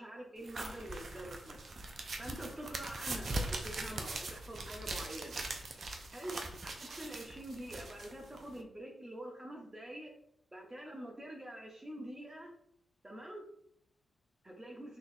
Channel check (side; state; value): both; normal; correlation 0.88